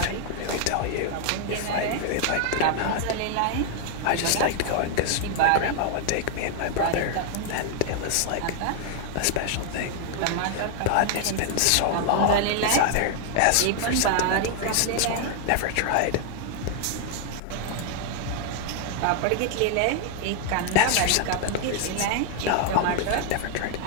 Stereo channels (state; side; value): different; both; correlation 0.00